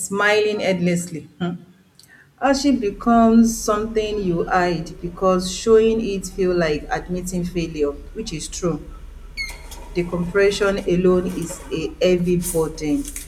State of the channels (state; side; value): identical; both; correlation 1.00